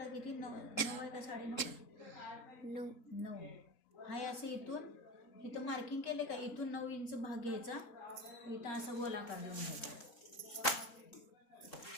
किती 9 आहे का 9.5? 9. हा असं इथं मार्किंग केले का इथून 9 इंच भाग घ्यायचा. इथं असं गोलाकार लावून घ्यायचा.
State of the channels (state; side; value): late; right; 3.8 ms